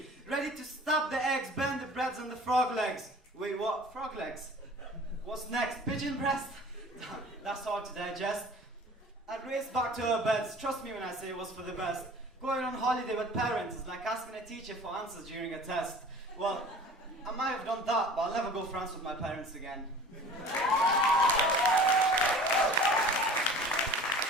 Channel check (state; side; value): normal; both; correlation 0.44